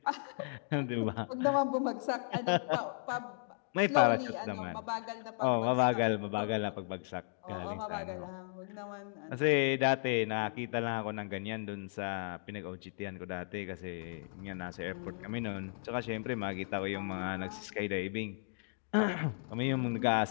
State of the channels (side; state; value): right; silent; digital silence